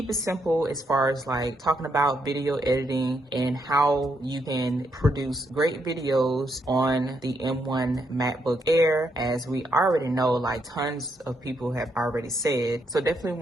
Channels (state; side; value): normal; both; correlation 0.77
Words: it simple as far as like talking about video editing and how you can produce great videos on the M1 MacBook Air, as we already know, like tons of people have already said. So definitely